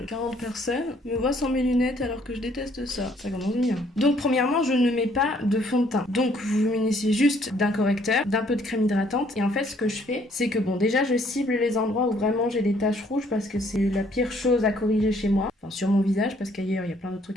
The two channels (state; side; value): normal; both; correlation 0.64